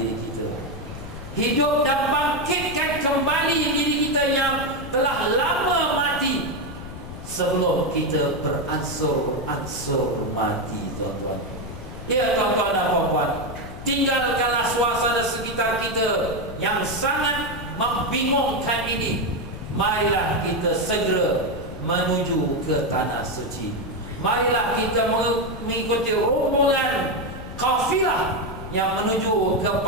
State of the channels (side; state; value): left; noise; rumble, 11 dB below the sound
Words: kita, hidup dan bangkitkan kembali diri kita yang telah lama mati, sebelum kita beransur-ansur mati, tuan-tuan. Ya tuan-tuan dan puan-puan, tinggalkanlah suasana sekitar kita yang sangat membingungkan ini. Marilah kita segera menuju ke tanah suci. Marilah kita mengikuti rombongan kafilah yang menuju